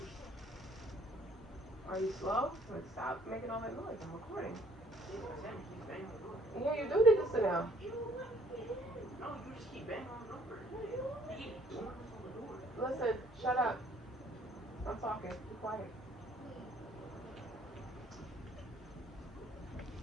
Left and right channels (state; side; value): normal; both; correlation 0.61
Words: Are you slow? Stop making all that noise. I'm recording. Yeah, you do need to sit down. No, you just keep banging on the door. Listen, shut up. I'm talking. Be quiet.